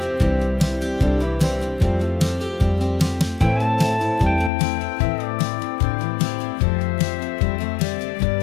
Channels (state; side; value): drops out; right; at 4.5 s